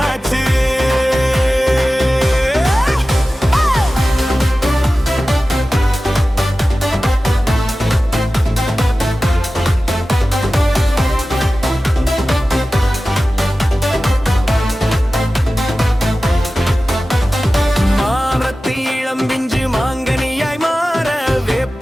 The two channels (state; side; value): normal; both; correlation 0.95